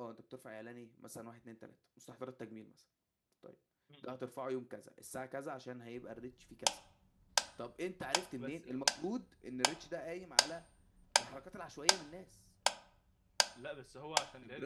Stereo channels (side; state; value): both; identical; correlation 1.00